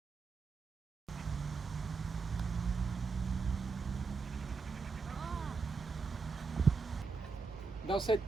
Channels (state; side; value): quieter; left; 4.6 dB